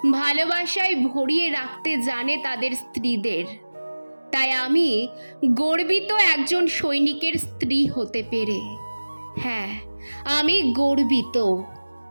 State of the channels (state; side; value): inverted; both; correlation -1.00